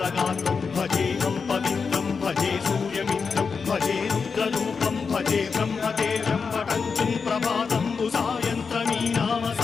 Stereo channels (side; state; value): right; quieter; 5.3 dB